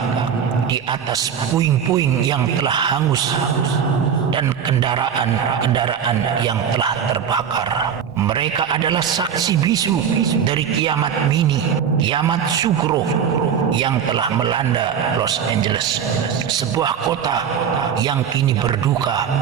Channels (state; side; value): quieter; left; 7.9 dB